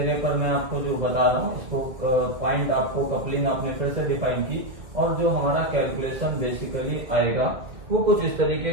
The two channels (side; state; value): left; late; 2.3 ms